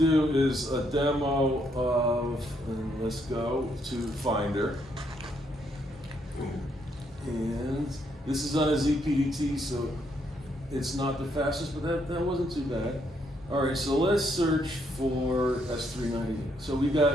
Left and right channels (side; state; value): both; normal; correlation 0.74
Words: is a demo of, and let's go to Finder. And this is on a ZPDT, so it's not the fastest, but that wasn't too bad. All right, so let's search for S390. So we